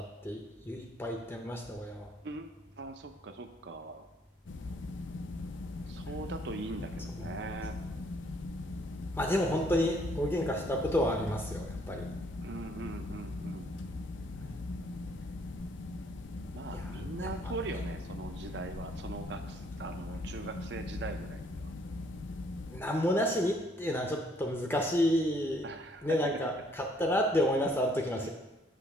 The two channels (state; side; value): normal; both; correlation 0.65